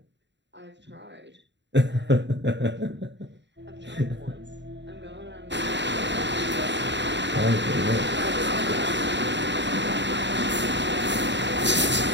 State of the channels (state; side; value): late; left; 0.52 ms